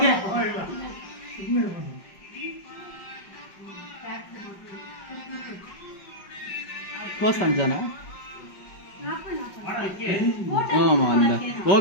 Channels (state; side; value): late; right; 5.2 ms